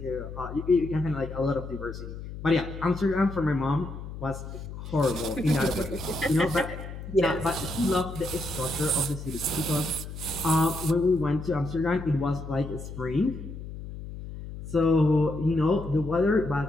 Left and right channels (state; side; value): noise; left; hum, 10 dB below the sound